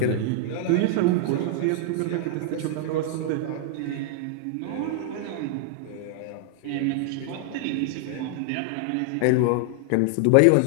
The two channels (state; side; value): different; both; correlation 0.00